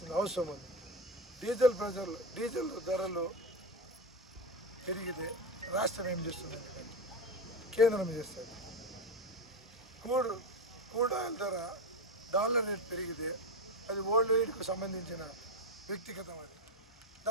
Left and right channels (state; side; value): normal; both; correlation 0.18